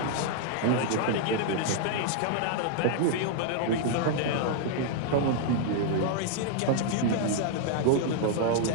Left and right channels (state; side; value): different; both; correlation -0.01